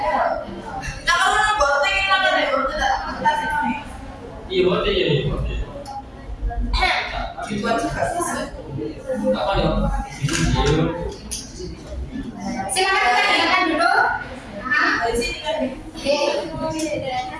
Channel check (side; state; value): both; identical; correlation 1.00